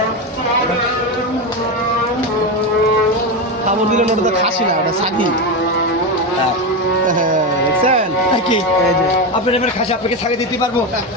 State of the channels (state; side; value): normal; both; correlation 0.14